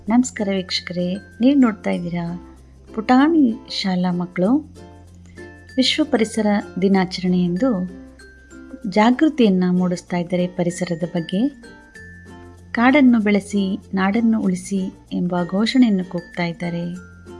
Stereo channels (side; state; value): both; identical; correlation 1.00